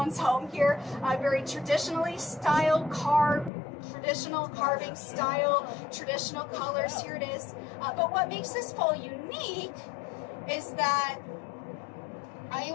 home here. Very traditionally styled traditional carving style, traditional colors. Here it is. But what makes this pole unique is that it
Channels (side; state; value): right; drops out; at 3.5 s